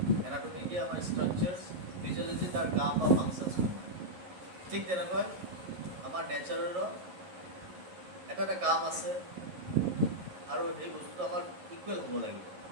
এনাটমি কি আমাৰ ষ্ট্ৰাকচাৰ্ছ, ফিজিঅ'লজি তাৰ কাম বা ফাংচনছ। ঠিক তেনেকৈ আমাৰ নেচাৰৰো এটা এটা কাম আছে, আৰু সেই বস্তুটো আমাৰ ইকুৱেল হ'ব লাগিব,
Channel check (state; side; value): late; left; 11 ms